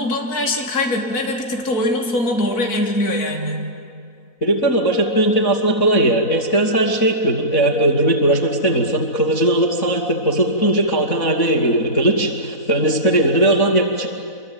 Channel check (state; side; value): late; right; 4.0 ms